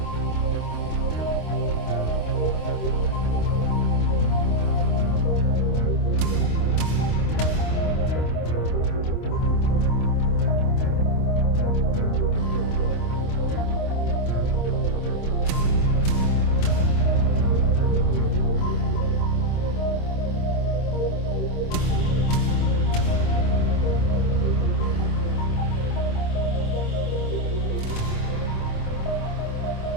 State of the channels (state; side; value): late; right; 26 ms